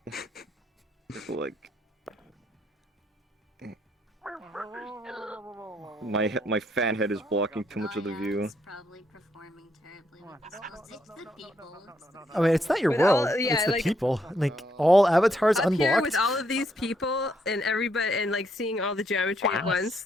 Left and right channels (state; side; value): normal; both; correlation 0.74